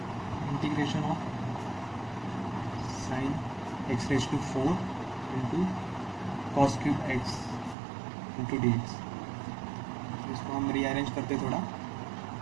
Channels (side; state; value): left; drops out; at 7.8 s